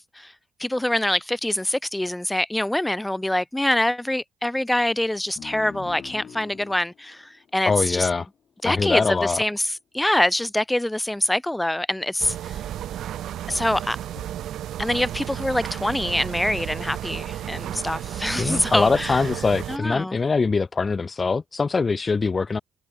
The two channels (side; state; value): both; normal; correlation 0.96